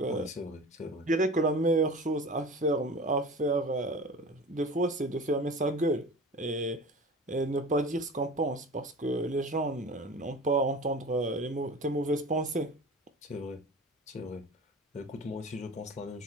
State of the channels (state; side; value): normal; both; correlation 0.37